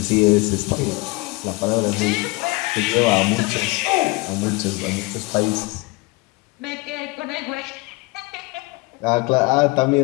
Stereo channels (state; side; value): quieter; right; 24.8 dB